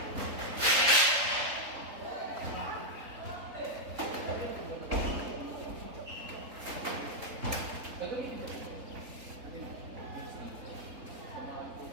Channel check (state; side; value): late; left; 3.7 ms